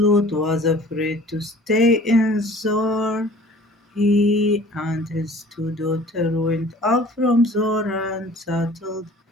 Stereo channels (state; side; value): normal; both; correlation 0.48